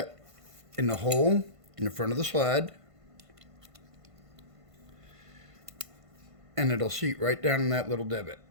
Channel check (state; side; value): late; left; 1.5 ms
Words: in the hole in the front of the slide, and it'll seat right down in that little divot.